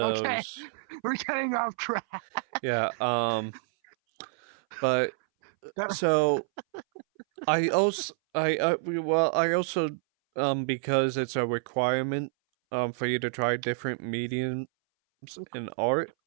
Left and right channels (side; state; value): left; silent; 59 dB below the other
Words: Okay. those. We're getting off track. Yeah. But That, so I also because it's a requirement for you to try different in art,